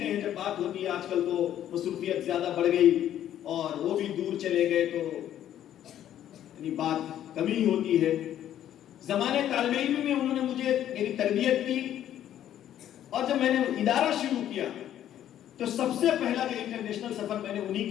ہیں جب بات ہوتی ہے، آج کل تو مصروفیت زیادہ بڑھ گئی اور وہ بھی دور چلے گئے تو یعنی بات کمی ہوتی ہے۔ زمانے طالب علم میں انہوں نے مجھے میری تربیت کی، اور جب میں نے ادارہ شروع کیا تو سب سے پہلا جو انٹرنیشنل سفر میں نے انہی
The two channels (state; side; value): quieter; right; 11.3 dB